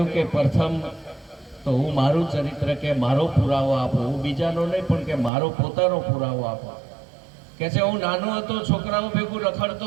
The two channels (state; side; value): drops out; left; at 5.3 s